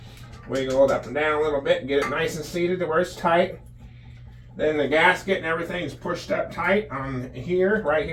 Wiggle it up and down a little bit and get it nice and seated to where it's tight. Then the gasket and everything's pushed up tight on here. Right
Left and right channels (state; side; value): identical; both; correlation 1.00